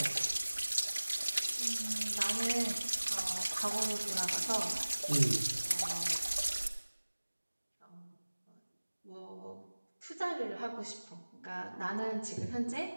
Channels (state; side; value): inverted; both; correlation -1.00